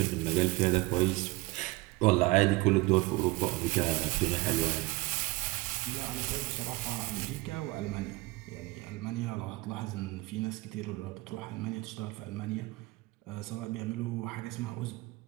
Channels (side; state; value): left; quieter; 21.9 dB